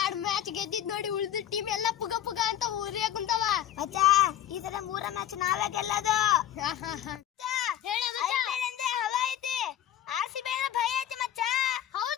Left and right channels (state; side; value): quieter; right; 11.5 dB